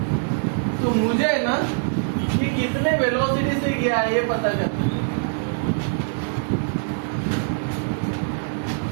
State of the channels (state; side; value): silent; left; 63 dB below the other